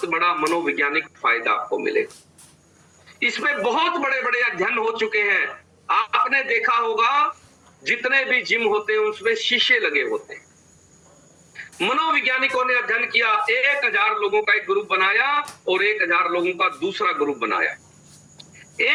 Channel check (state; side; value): identical; both; correlation 1.00